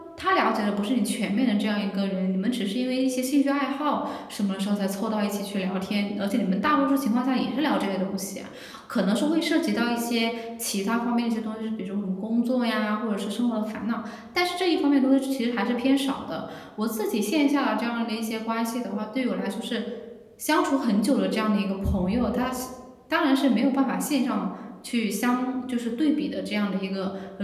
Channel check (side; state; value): both; identical; correlation 1.00